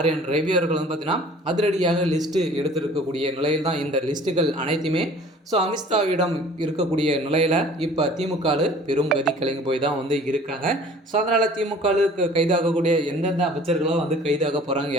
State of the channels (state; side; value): normal; both; correlation 0.49